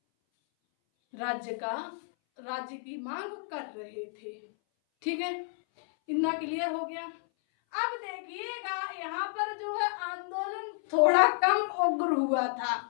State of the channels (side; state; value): right; silent; 57 dB below the other